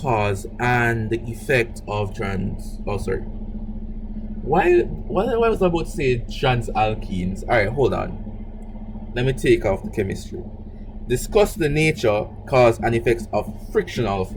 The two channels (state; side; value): identical; both; correlation 1.00